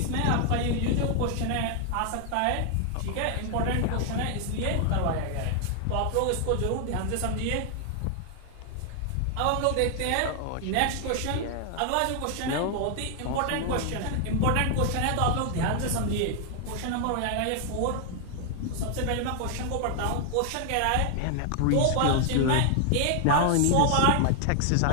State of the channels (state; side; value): different; both; correlation 0.00